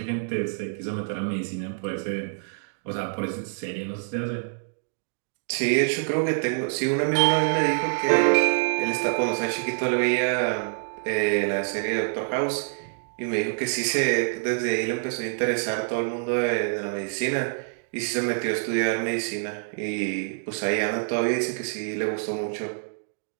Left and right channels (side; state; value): left; silent; digital silence